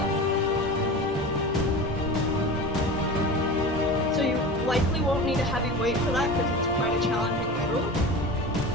So you likely won't need a heavy weight for that because it's quite a challenging move.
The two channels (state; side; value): normal; both; correlation 0.32